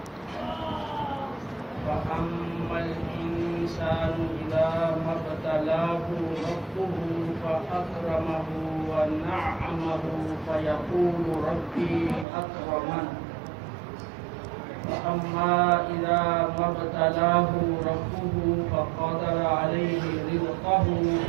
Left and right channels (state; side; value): drops out; left; at 12.2 s